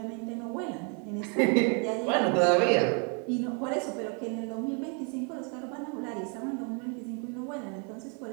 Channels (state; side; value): quieter; left; 38.0 dB